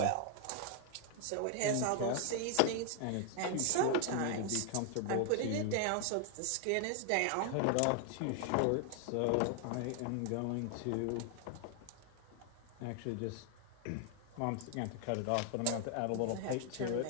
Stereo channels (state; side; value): different; both; correlation 0.00